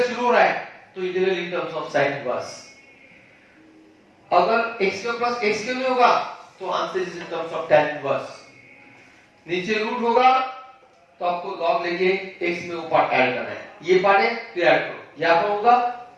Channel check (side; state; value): both; identical; correlation 1.00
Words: शुरू हो रहा है तो integral in terms of sin inverse. अगर x square plus x square में होगा तो answer is in terms of tan inverse. नीचे रूट होगा तो आपको log लेके x में वो पार्ट ऐड करना है, ये पार्ट है तो ऐड करो, यहाँ पर होगा